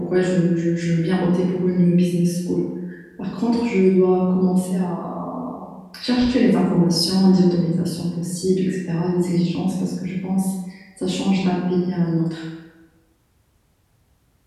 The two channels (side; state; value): both; identical; correlation 1.00